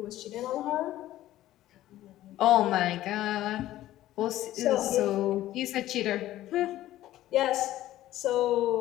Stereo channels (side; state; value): right; quieter; 14.4 dB